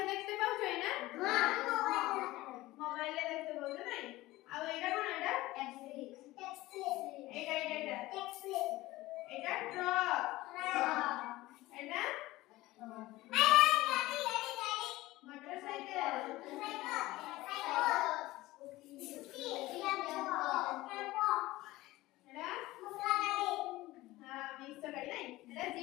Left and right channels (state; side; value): quieter; right; 18.2 dB